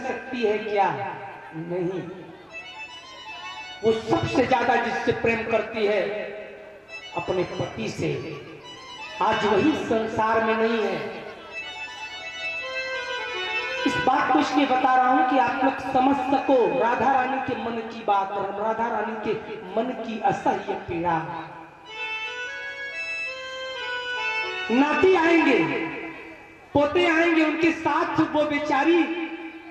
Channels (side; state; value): both; identical; correlation 1.00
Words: सकती है क्या? नहीं। वो सबसे ज्यादा जिससे प्रेम करती है अपने पति से। आज वही संसार में नहीं है। इस बात को इसलिए बता रहा हूं कि आप लोग समझ सको राधा रानी के मन की बात और राधा रानी के मन की असह्य पीड़ा। नाती आएंगे, पोते आएंगे, उनके साथ वो बेचारी